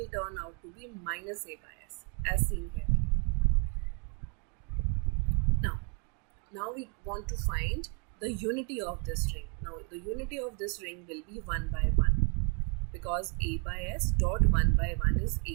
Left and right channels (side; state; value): left; quieter; 34.6 dB